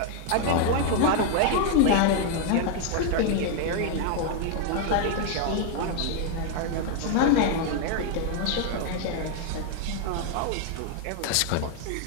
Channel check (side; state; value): both; different; correlation 0.00